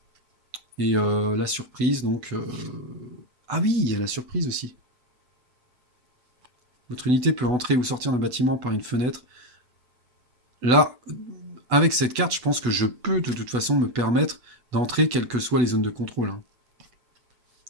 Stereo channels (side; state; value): left; late; 8.1 ms